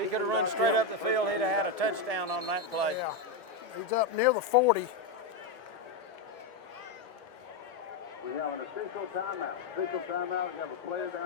could have run straight up the field, he'd have had a touchdown on that play. Yeah, he's up near the 40. We have an official timeout. Official timeout. We have a player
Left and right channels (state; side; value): quieter; right; 3.7 dB